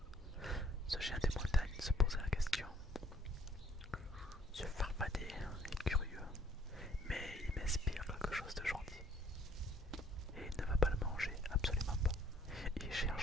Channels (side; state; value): both; normal; correlation 0.61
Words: Ce géant des montagnes se posait la question. Ce farfadet est curieux, mais il m'inspire quelque chose de gentil. Et il ne va pas le manger, absolument pas. Il